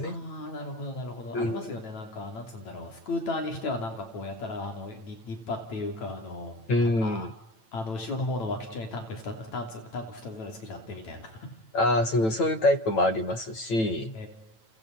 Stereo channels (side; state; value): right; late; 9.0 ms